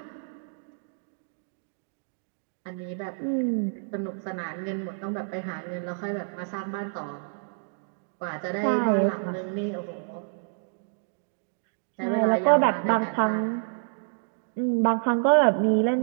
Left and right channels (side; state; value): left; silent; digital silence